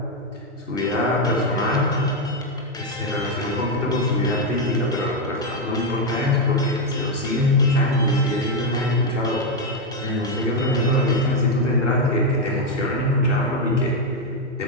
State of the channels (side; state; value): both; normal; correlation 0.04